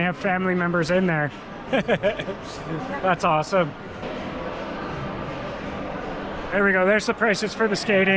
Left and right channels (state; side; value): identical; both; correlation 1.00